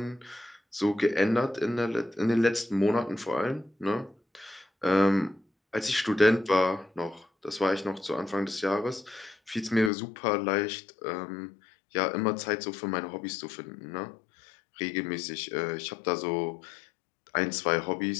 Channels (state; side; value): drops out; right; at 9.9 s